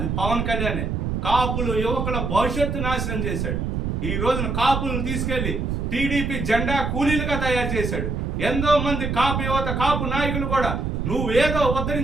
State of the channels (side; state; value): right; noise; rumble, 1 dB below the sound